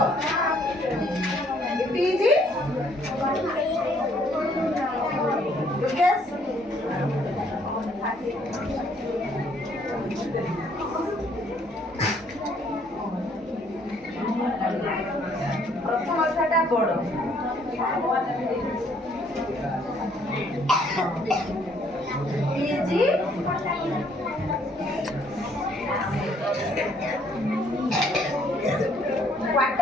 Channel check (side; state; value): both; normal; correlation 0.65